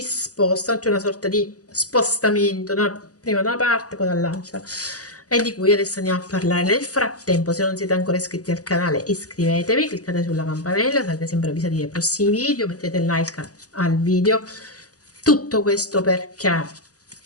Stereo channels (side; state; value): right; late; 0.67 ms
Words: spostano, c'è una sorta di spostamento, prima da una parte, poi dall'altra, e di cui adesso andiamo a parlare. Nel frattempo, se non siete ancora iscritti al canale, iscrivetevi, cliccate sulla campanella, sarete sempre avvisati dei prossimi video, mettete like al video. Tutto questo perché?